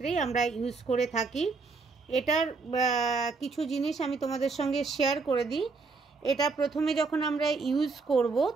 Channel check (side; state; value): left; quieter; 4.2 dB